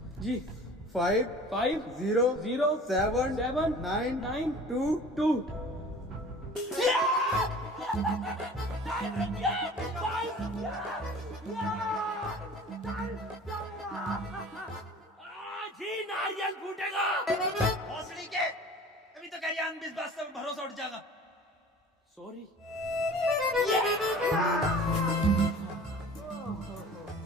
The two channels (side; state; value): both; normal; correlation 0.44